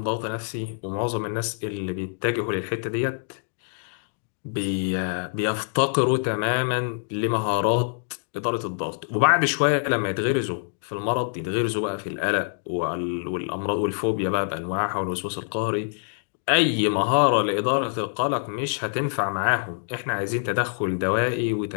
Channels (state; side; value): silent; right; digital silence